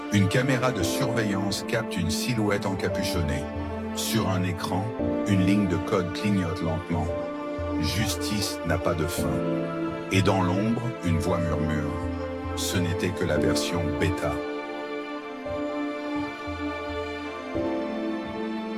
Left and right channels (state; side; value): identical; both; correlation 1.00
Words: une caméra de surveillance capte une silhouette encapuchonnée. Sur un écran, une ligne de code clignote lentement. Justice n'a pas de fin. Et dans l'ombre, une voix murmure. Ce n'était que la version bêta.